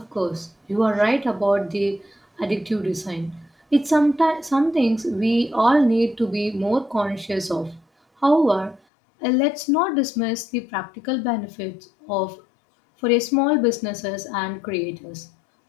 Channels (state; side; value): drops out; right; at 8.8 s